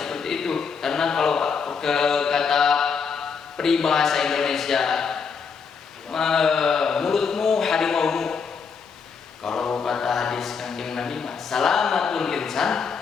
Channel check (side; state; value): right; quieter; 5.8 dB